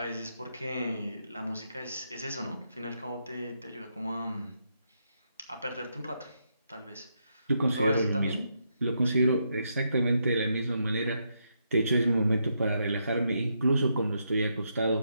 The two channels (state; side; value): inverted; both; correlation -0.80